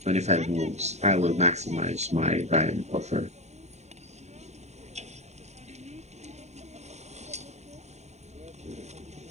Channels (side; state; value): left; late; 0.32 ms